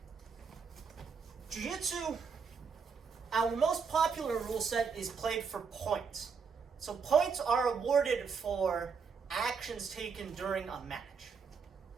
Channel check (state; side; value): quieter; left; 5.8 dB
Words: Jiu-Jitsu, our most popular rule set is played for points. So points are awarded for actions taken during a match.